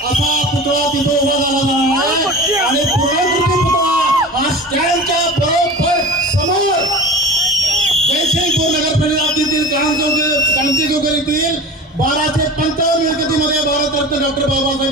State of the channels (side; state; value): both; normal; correlation 0.35